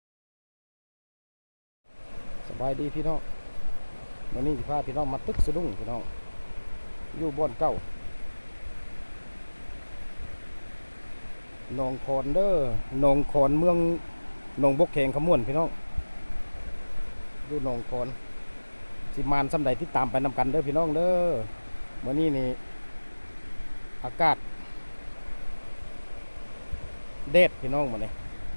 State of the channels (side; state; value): both; inverted; correlation -1.00